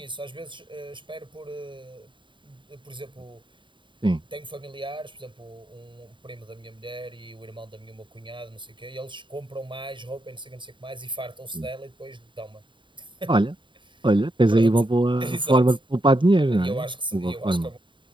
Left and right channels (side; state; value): left; late; 0.23 ms